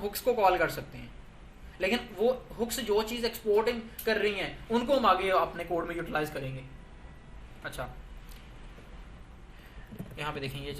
को कॉल कर सकते हैं। लेकिन वो हुक्स जो चीज एक्सपोर्टिंग कर रही हैं, उनको हम आगे अपने कोड में यूटिलाइज करेंगे। अच्छा, यहाँ पे देखें ये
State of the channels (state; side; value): identical; both; correlation 1.00